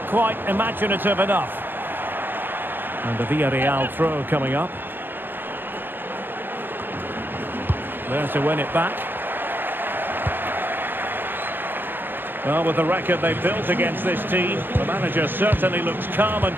quite imaginative enough. And the Villarreal throw coming up. There to win it back. Well, with the record they've built against this team, the manager certainly looks calm and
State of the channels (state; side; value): late; left; 0.097 ms